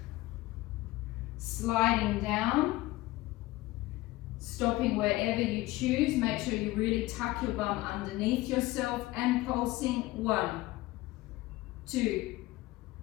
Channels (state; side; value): quieter; right; 18.4 dB